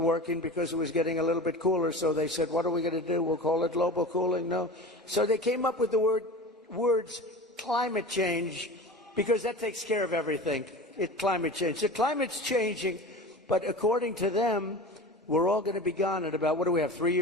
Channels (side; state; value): both; normal; correlation 0.33